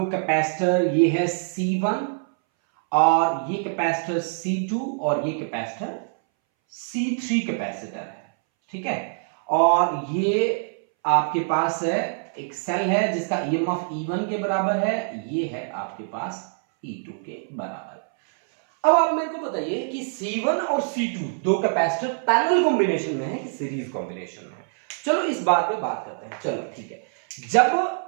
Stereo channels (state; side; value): silent; left; 61 dB below the other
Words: कैपेसिटर ये है C1 और ये कैपेसिटर C2 और ये कैपेसिटर C3 कैपेसिटर है, ठीक है। और ये आपके पास है एक सेल है जिसका EMF E1 के बराबर है, ये है आपके पास E2 के बराबर। अब आप मेरे को बताइए कि C1 और C2 दो कैपेसिटर पैरेलल कॉम्बिनेशन में है कि सीरीज कॉम्बिनेशन में है। चलो इस बात पे बात करते हैं, चलो ठीक है। जब